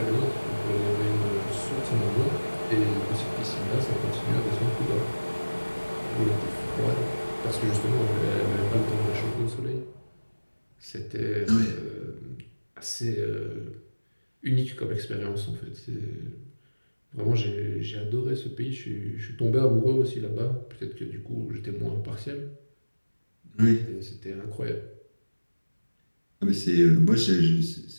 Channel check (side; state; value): both; inverted; correlation -1.00